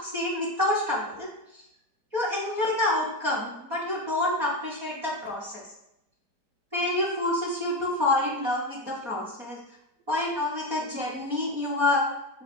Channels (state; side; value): late; left; 4.2 ms